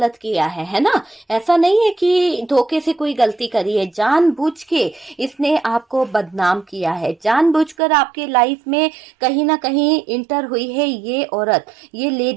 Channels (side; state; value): left; drops out; at 7.8 s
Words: किया है ना। ऐसा नहीं है कि धोखे से कोई गलती करी है, जानबूझ के इसने आपको बदनाम किया है, जानबूझकर आपके लाइफ में कहीं ना कहीं इंटर हुई है ये औरत, ये